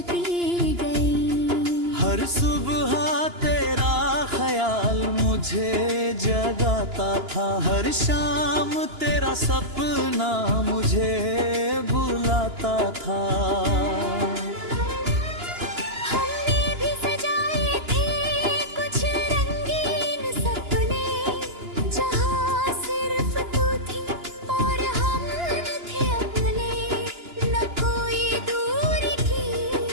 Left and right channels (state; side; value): late; left; 2.9 ms